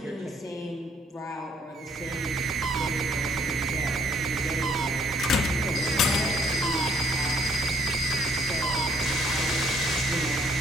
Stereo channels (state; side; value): normal; both; correlation 0.64